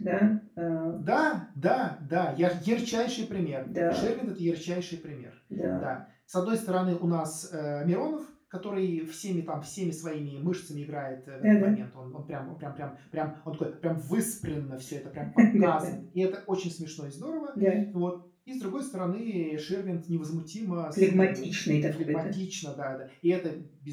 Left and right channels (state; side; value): identical; both; correlation 1.00